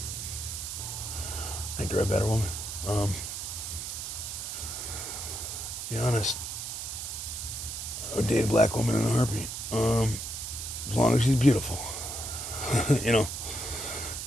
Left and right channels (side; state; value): right; noise; hiss, 6 dB below the sound